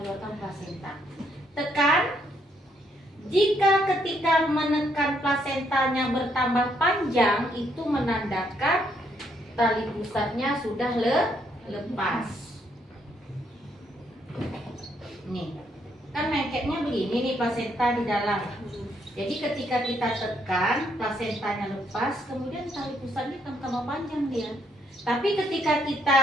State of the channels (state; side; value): normal; both; correlation 0.73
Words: plasenta. Tekan. Jika ketika menekan plasentanya bertambah panjang, itu menandakan tali pusatnya sudah lepas. Nih, kan lengketnya begini nih plasenta di dalam. Jadi ketika kita tekan, plasentanya lepas, kemudian tali pusatnya tambah panjang dia. Tapi ketika kita